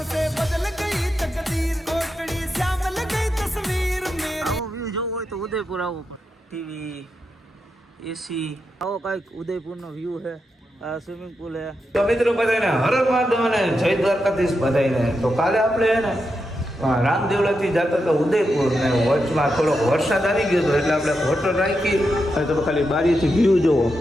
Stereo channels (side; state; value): both; normal; correlation 0.86